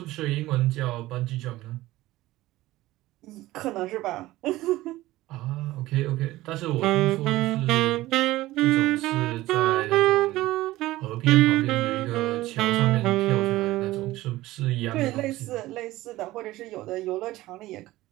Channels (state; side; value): quieter; left; 17.3 dB